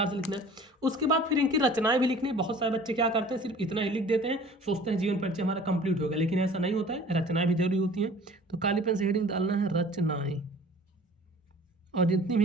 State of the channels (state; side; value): normal; both; correlation 0.47